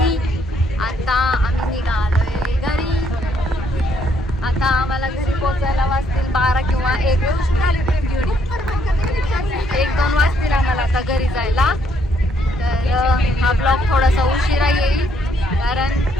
आता आम्ही निघालोय घरी. आता आम्हाला घरी पोहोचायला वाजतील 12 किंवा 1-2 वाजतील आम्हाला आता घरी जायला. तर हा ब्लॉग थोडासा उशिरा येईल कारण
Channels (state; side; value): normal; both; correlation 0.71